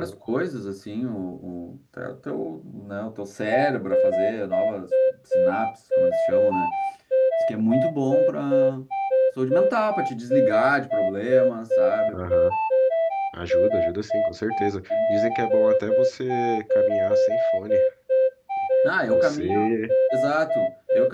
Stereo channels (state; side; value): identical; both; correlation 1.00